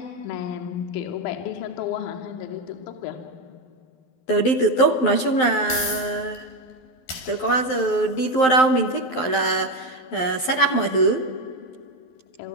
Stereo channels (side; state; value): right; late; 12 ms